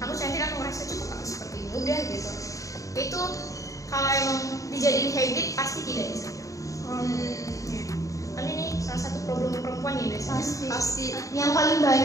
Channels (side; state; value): right; late; 0.16 ms